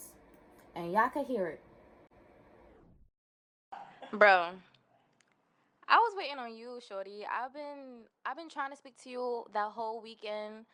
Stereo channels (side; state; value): both; identical; correlation 1.00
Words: and y'all could hear it. Bro, I was waiting on you, shorty. I've been trying to speak to you that whole weekend.